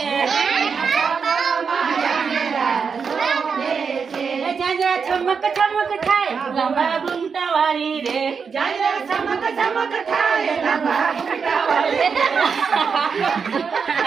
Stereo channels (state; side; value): quieter; left; 5.9 dB